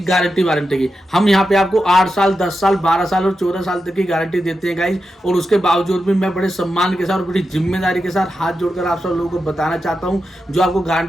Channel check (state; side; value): normal; both; correlation 0.89